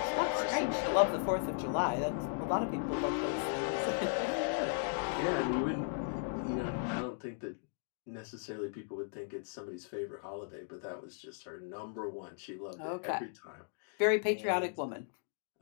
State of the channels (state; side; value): silent; right; digital silence